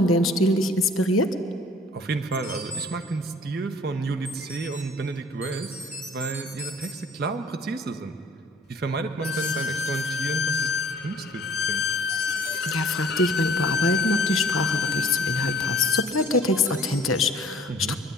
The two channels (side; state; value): both; normal; correlation 0.53